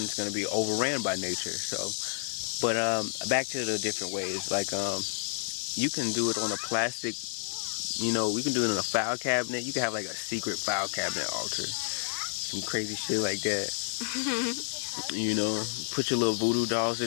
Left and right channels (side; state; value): right; silent; digital silence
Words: going to be overran by nature. So, but back to the different ways. Like you can do it on a plastic. You know, we can do it in a file cabinet. You can have like a secret file cabinet altar. Some crazy shit like that. You know, put your little voodoo dolls